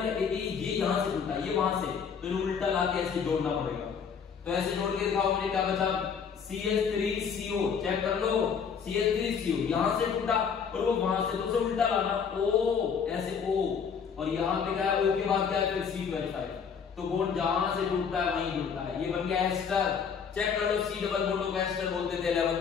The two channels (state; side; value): quieter; right; 6.6 dB